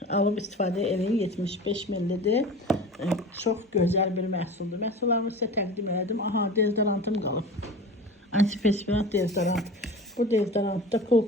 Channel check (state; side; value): normal; both; correlation 0.35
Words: Alıb istifadə eləyin, 75 millidir. Çox gözəl bir məhsuldur. Məhsullarımı sizə təqdim elədim. Aha, deodorantım qalıb. Antiperspirant deodorant. Bu deodorantda Cool